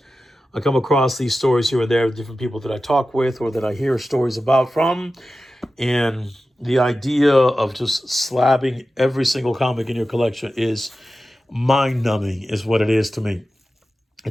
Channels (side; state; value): both; normal; correlation 0.94